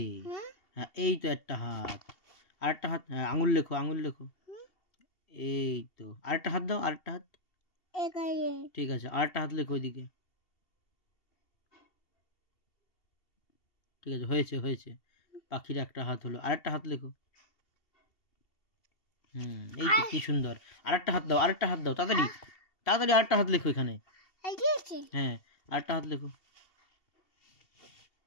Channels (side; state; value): right; late; 2.7 ms